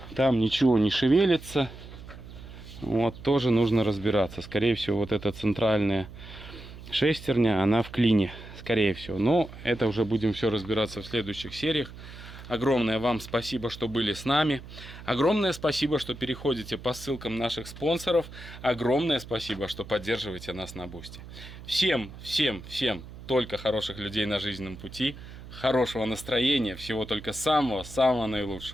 Там ничего не шевелится. Вот тоже нужно разбираться. Скорее всего, вот эта центральная шестерня, она в клине. Скорее всего. Но это уже будем все разбираться в следующих сериях. Огромное вам спасибо, что были с нами. Огромное спасибо, что переходите по ссылкам наших спонсоров. Огромное спасибо, что поддерживаете нас на Бусти. Всем только хороших людей на жизненном пути. Хорошего настроения. Всего только самого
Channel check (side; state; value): right; noise; hum, 15 dB below the sound